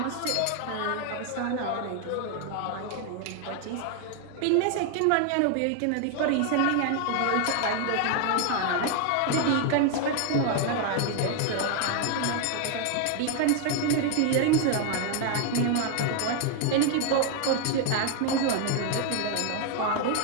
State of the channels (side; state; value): both; different; correlation 0.00